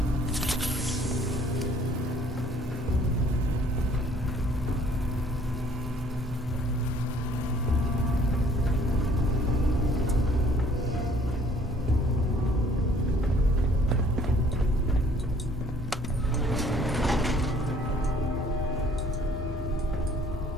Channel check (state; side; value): normal; both; correlation 0.58